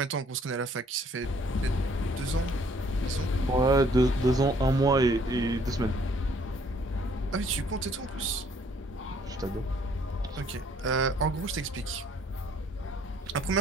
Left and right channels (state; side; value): normal; both; correlation 0.62